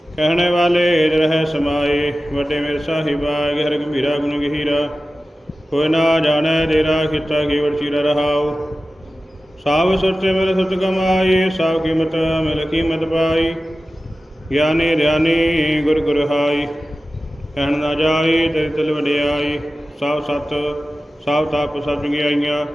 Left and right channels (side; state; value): both; normal; correlation 0.95